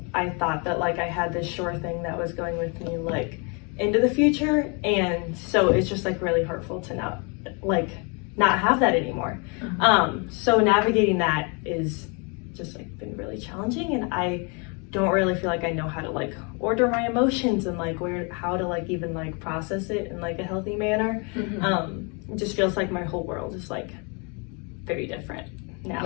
I thought that I had this sure thing that was going with me into the future, and so it's just really hurtful to not have that anymore. So navigating that is just been really challenging, and I don't really feel I know how to order my emotions and how to even process it in a healthy manner. It just feels my whole world is very different now.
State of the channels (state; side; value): quieter; right; 33.7 dB